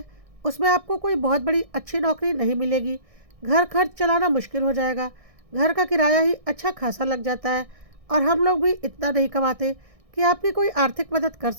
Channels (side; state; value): left; late; 1.6 ms